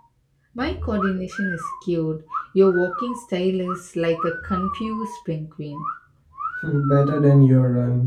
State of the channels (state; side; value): identical; both; correlation 1.00